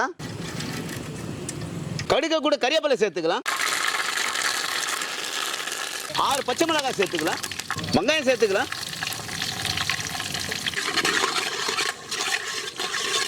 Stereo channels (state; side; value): identical; both; correlation 1.00